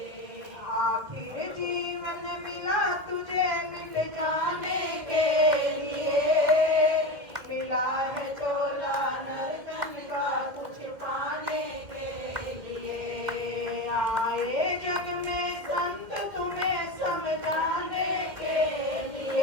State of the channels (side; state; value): left; late; 1.9 ms